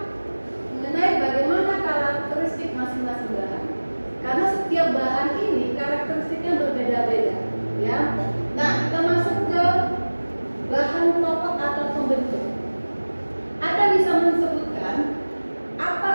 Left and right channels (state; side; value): inverted; both; correlation -1.00